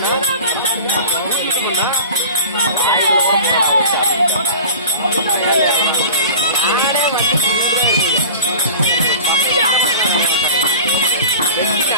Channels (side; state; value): both; inverted; correlation -0.36